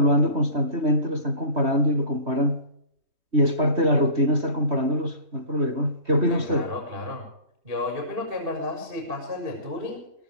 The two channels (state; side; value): late; left; 3.2 ms